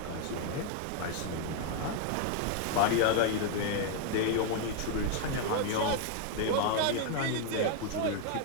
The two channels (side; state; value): both; different; correlation 0.01